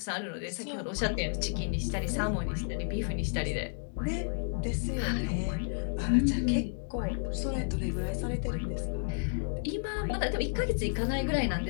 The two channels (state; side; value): silent; right; digital silence